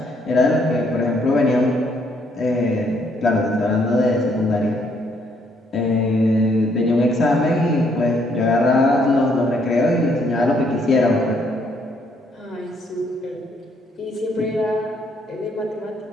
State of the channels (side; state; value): both; normal; correlation 0.69